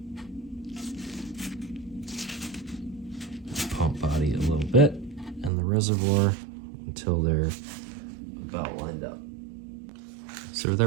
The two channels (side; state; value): left; drops out; at 5.5 s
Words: the pump body a little bit and the reservoir until they're about lined up. So with